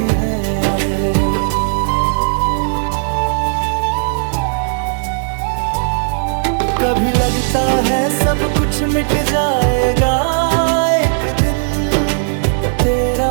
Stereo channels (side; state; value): left; silent; digital silence